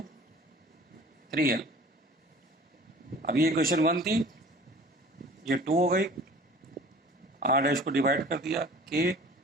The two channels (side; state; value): both; normal; correlation 0.46